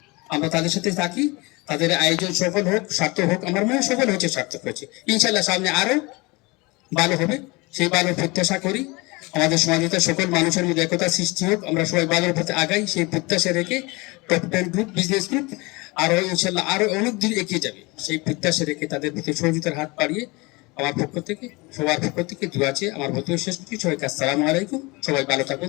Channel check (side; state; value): right; quieter; 25.0 dB